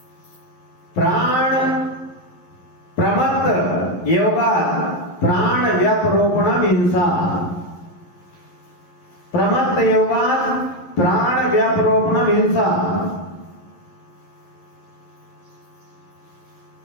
प्राण प्रमत्त योगा प्राण व्यपरोपणम हिंसा, प्रमत्त योगा प्राण व्यपरोपणम हिंसा।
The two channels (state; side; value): late; right; 11 ms